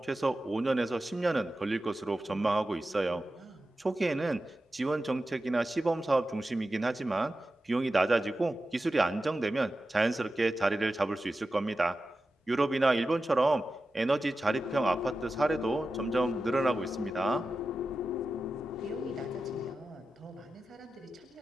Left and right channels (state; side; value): normal; both; correlation 0.93